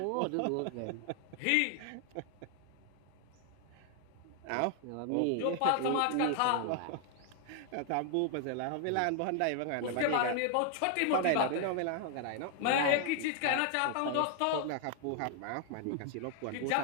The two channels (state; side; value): different; both; correlation 0.00